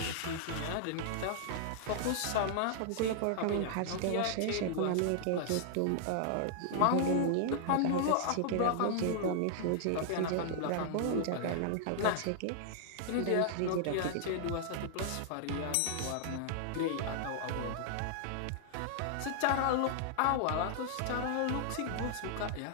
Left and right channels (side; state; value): both; different; correlation -0.01